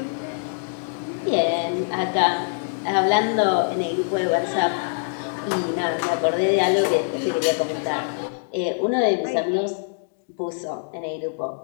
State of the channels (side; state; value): right; silent; digital silence